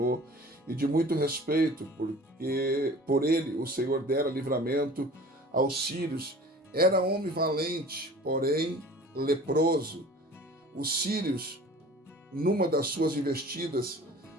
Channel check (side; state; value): both; normal; correlation 0.44